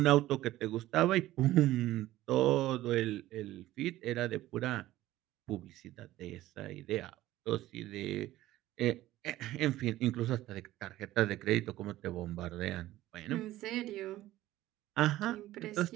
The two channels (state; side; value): quieter; left; 15.5 dB